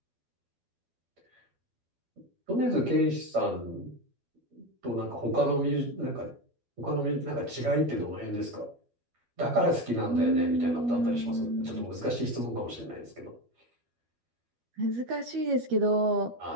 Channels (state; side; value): late; left; 12 ms